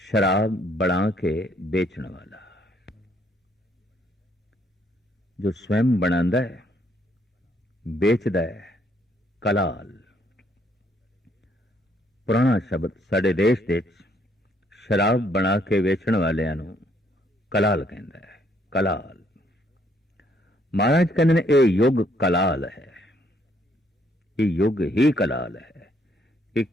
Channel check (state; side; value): normal; both; correlation 0.68